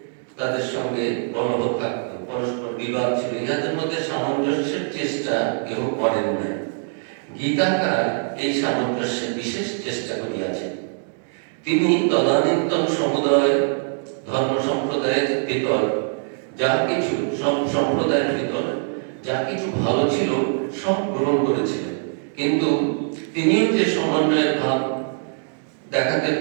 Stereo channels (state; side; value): silent; left; digital silence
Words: তাদের সঙ্গে কলহ থাকত, পরস্পর বিবাদ ছিল। ইহাদের মধ্যে সামঞ্জস্যের চেষ্টা কেউ করেন না। গীতাকার এই সামঞ্জস্যের বিশেষ চেষ্টা করিয়াছেন। তিনি তদানীন্তন সমুদায় ধর্ম সম্প্রদায়ের ভিতর যা কিছু, সব সম্প্রদায়ের ভিতর যা কিছু ভালো ছিল সব গ্রহণ করেছিলেন, কিন্তু তিনিও যে সমন্বয়ের ভাব দেখাতে